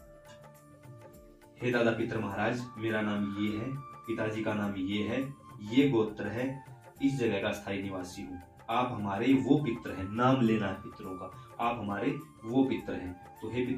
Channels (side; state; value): both; identical; correlation 1.00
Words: हे दादा पितर महाराज, मेरा नाम ये है, पिताजी का नाम ये है, ये गोत्र है, इस जगह का स्थायी निवासी हूँ। आप हमारे वो पितर हैं, नाम लेना है पितरों का, आप हमारे वो पितर हैं। तो हे